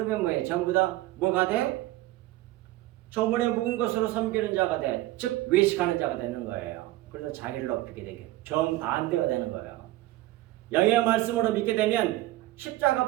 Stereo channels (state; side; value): quieter; left; 16.9 dB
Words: 뭐예요? 전부 다 뭐가 돼? 저문에 묵은 것으로 섬기는 자가 돼. 즉 외식하는 자가 되는 거예요. 그래서 자기를 높이게 되게 정반대가 되는 거예요. 영의 말씀으로 믿게 되면 십자가